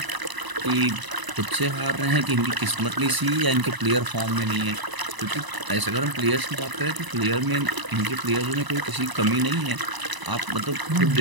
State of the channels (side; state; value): left; late; 1.0 ms